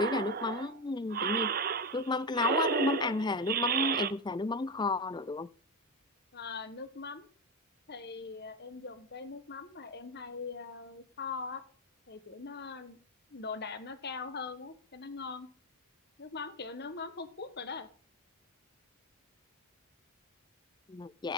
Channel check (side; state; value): both; normal; correlation 0.14